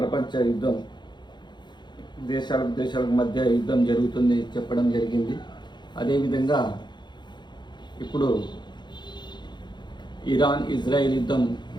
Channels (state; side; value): late; right; 0.21 ms